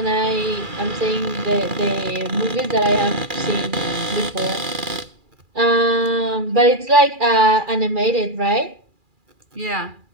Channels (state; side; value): late; left; 2.4 ms